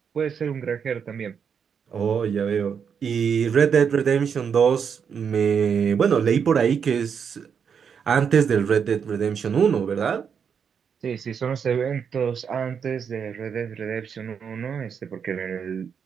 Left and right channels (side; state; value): left; quieter; 7.0 dB